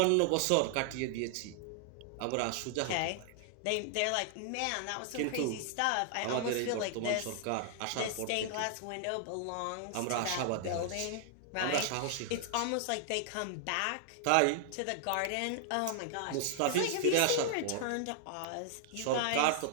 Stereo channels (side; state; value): both; different; correlation 0.00